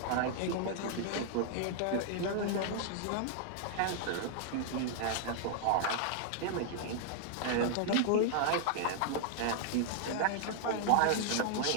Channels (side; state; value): both; different; correlation -0.01